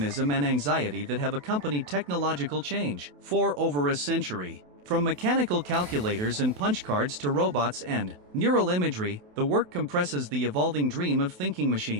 and anxiety that have accompanied technological change for over a century. From mechanical calculators and punch cards to robots and neural imagery, the work compresses the evolving dream of thinking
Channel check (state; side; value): late; left; 28 ms